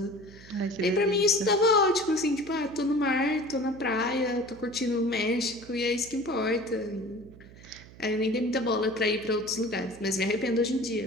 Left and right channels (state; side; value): noise; right; hum, 20 dB below the sound